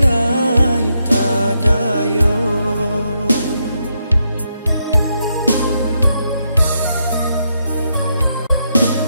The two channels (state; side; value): inverted; both; correlation -0.80